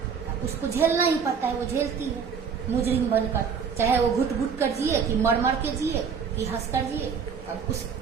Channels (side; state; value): left; quieter; 6.4 dB